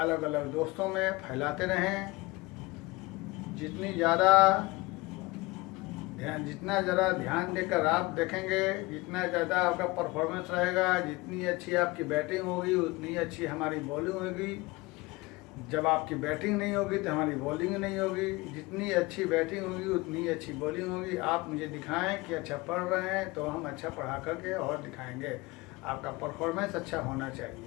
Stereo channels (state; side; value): quieter; right; 22.8 dB